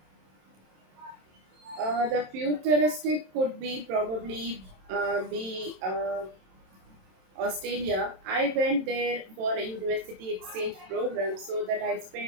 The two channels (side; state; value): left; late; 27 ms